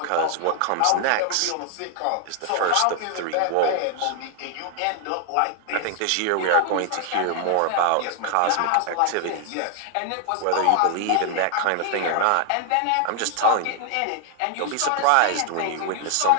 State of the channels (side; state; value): both; different; correlation 0.00